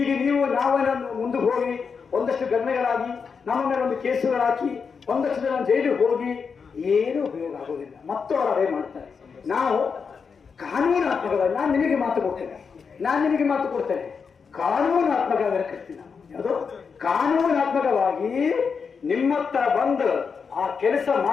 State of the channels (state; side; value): quieter; right; 5.7 dB